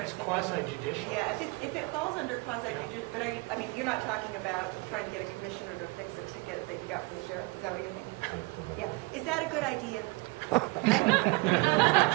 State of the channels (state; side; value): quieter; left; 25.9 dB